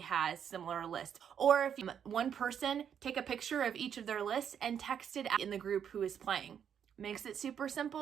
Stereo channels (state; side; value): quieter; left; 8.3 dB